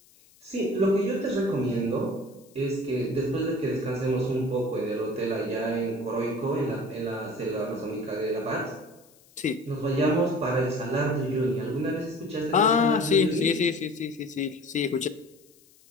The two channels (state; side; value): noise; left; hiss, 28 dB below the sound